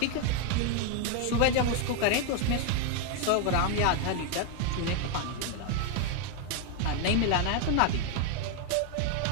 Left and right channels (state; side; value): different; both; correlation 0.01